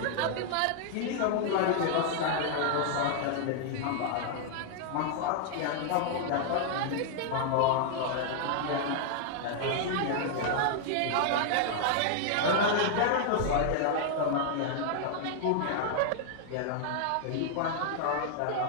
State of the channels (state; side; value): different; both; correlation -0.01